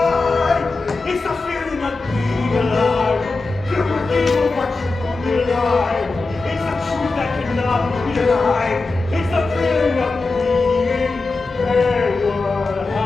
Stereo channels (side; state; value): right; quieter; 3.6 dB